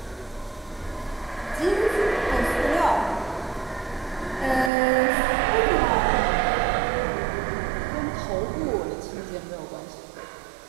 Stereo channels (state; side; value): drops out; left; at 4.7 s